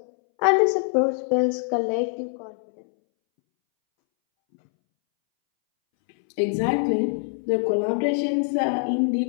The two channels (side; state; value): right; silent; 63 dB below the other